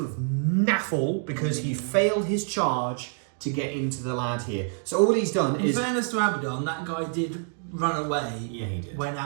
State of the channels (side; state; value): left; silent; 55 dB below the other